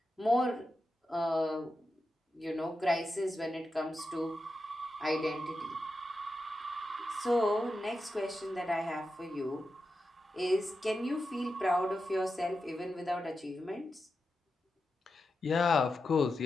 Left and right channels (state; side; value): normal; both; correlation 0.89